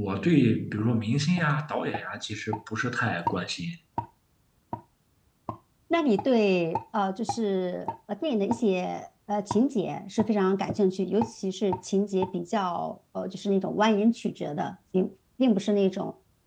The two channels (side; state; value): both; identical; correlation 1.00